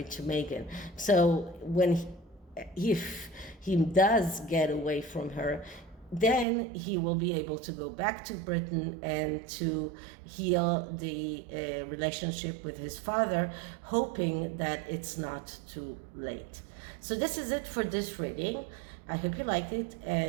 to Meghan. So if he does get away from her, then he will be able to go back to Britain and to heal the relationship with his father, hoping that it's not too late. So this is it for this reading. I hope you liked it,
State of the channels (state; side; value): drops out; left; at 6.5 s